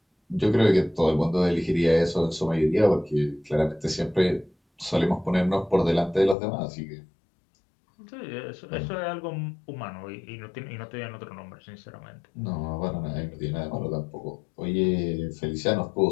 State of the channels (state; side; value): drops out; right; at 6.4 s